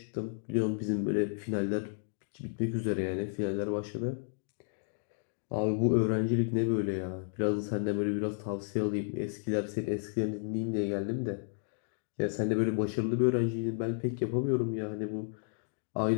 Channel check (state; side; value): silent; right; digital silence